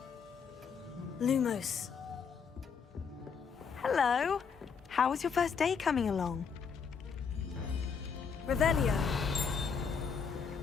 Lumos. Hello. How was your first day coming along? Revelio.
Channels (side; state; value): right; quieter; 6.1 dB